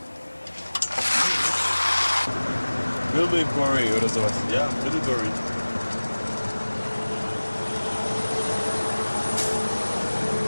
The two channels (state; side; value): inverted; both; correlation -1.00